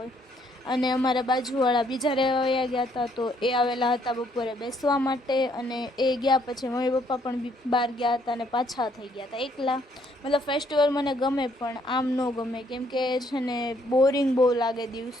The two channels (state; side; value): normal; both; correlation 0.68